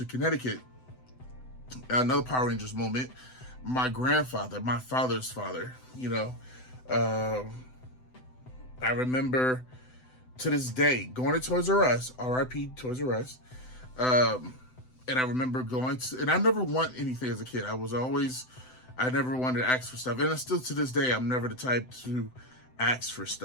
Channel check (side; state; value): right; late; 7.9 ms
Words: Connecticut, another Power Rangers moment. My grandfather, my father's father, you know, I remember to this day going to Toys R Us, RIP Toys R Us, and I remember going to, and I never want anything as a kid. I never wanted to ask for stuff, and still to this day, I'm never the type to ask for